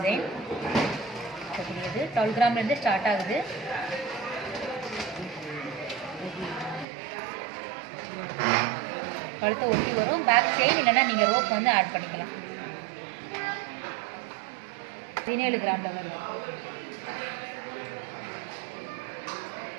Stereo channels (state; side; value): drops out; left; at 6.9 s